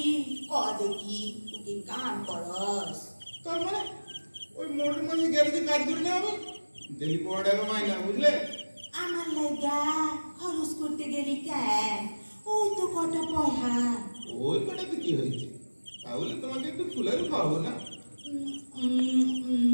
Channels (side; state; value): both; inverted; correlation -1.00